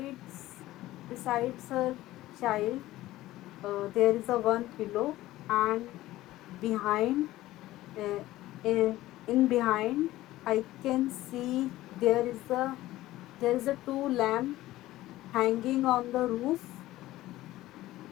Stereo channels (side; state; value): right; quieter; 16.2 dB